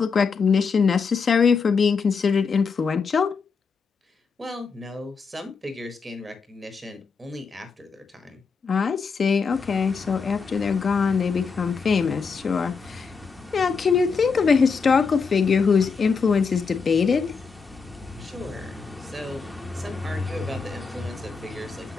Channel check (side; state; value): right; quieter; 5.3 dB